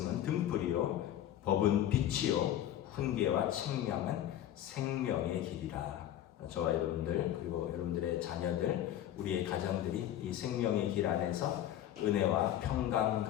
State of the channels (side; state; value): right; quieter; 11.7 dB